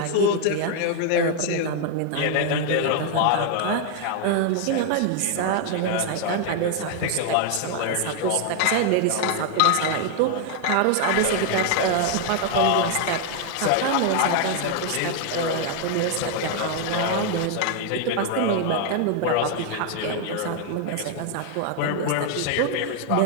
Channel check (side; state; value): both; different; correlation 0.00